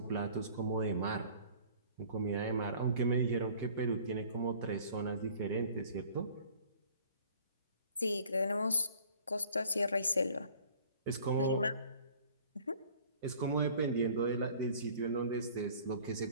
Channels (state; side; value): inverted; both; correlation -0.51